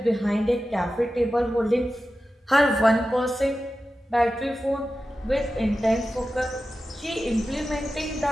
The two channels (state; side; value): normal; both; correlation 0.93